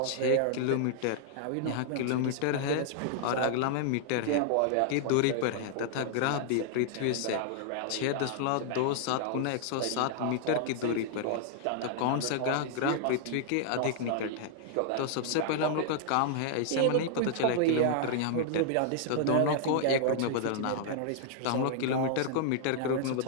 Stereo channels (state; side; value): different; both; correlation -0.01